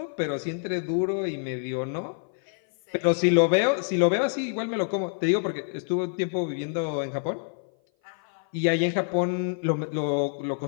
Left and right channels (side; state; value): right; silent; 56 dB below the other